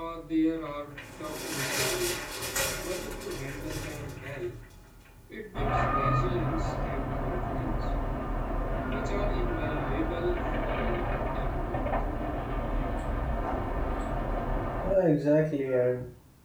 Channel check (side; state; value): both; identical; correlation 1.00